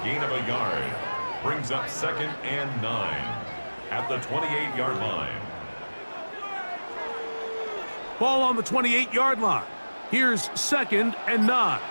gain of a yard brings up 2nd and 9 at the 28-yard line. Ball on the 28-yard line. Here's 2nd and 9.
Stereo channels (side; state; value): both; inverted; correlation -1.00